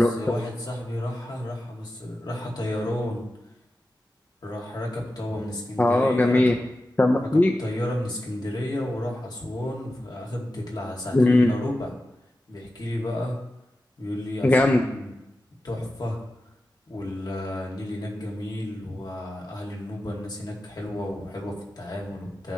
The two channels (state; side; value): normal; both; correlation 0.92